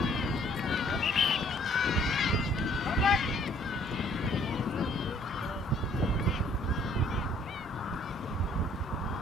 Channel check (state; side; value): normal; both; correlation 0.60